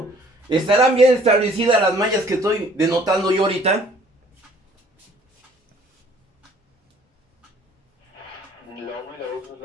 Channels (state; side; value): normal; both; correlation 0.57